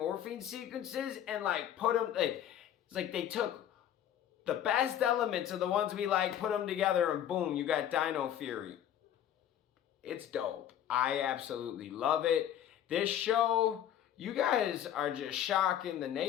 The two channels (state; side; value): quieter; right; 10.6 dB